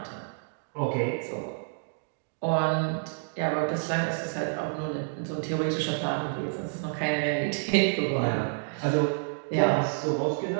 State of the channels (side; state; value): left; silent; digital silence